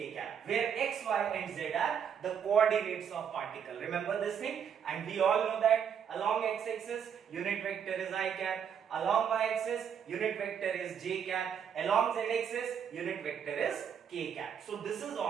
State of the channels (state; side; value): quieter; left; 8.0 dB